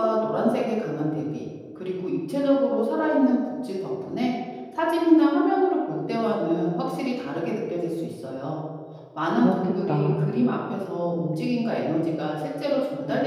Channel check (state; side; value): identical; both; correlation 1.00